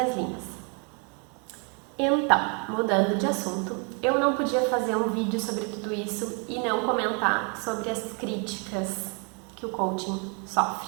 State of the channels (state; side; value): quieter; left; 36.5 dB